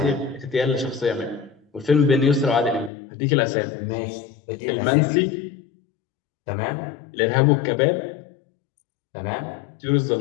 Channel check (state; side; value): drops out; right; at 2.9 s